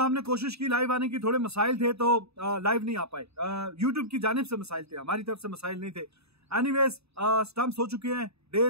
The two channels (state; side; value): late; left; 0.79 ms